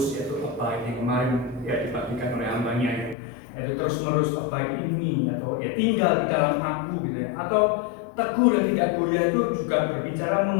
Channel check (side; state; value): right; drops out; at 3.2 s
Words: yaitu abide yang kemarin ya dibagikan oleh hambanya ya, yaitu terus menerus abide ini, atau ya tinggal di dalam aku gitu ya. Atau teguh dan tidak goyah itu juga berbicara